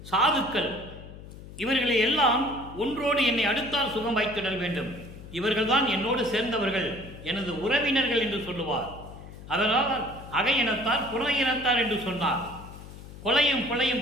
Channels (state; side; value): noise; left; hum, 15 dB below the sound